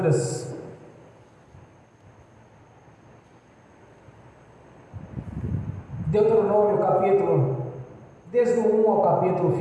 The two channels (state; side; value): identical; both; correlation 1.00